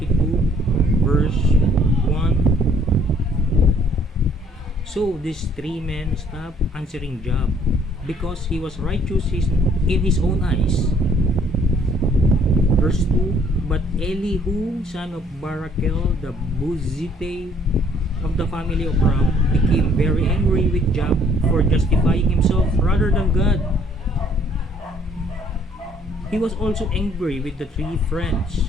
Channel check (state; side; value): normal; both; correlation 0.61